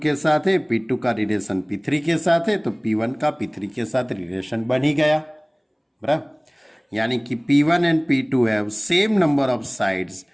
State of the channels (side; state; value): both; identical; correlation 1.00